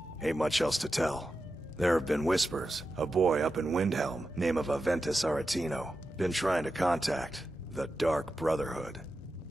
Ain't much else to tell. There have been whispers. A boy up in Windhelm, name of Aventus Aretino, been trying to contact the Dark Brotherhood.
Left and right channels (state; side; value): normal; both; correlation 0.91